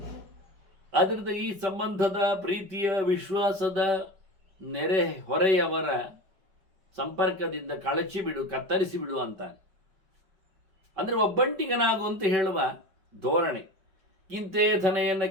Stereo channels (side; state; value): left; late; 5.1 ms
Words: ಆದ್ದರಿಂದ ಈ ಸಂಬಂಧದ ಪ್ರೀತಿಯ ವಿಶ್ವಾಸದ ನೆರೆ ಹೊರೆಯವರ ಸಂಪರ್ಕದಿಂದ ಕಳಚಿ ಬಿಡು, ಕತ್ತರಿಸಿ ಬಿಡು ಅಂತಾನೆ. ಅಂದರೆ ಒಬ್ಬಂಟಿಗನಾಗು ಅಂತ ಹೇಳುವ ಧೋರಣೆ. ಕಿಂತೆ ಧನೆಯನ್ನ